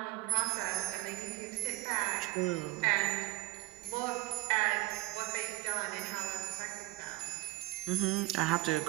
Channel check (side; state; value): left; quieter; 19.3 dB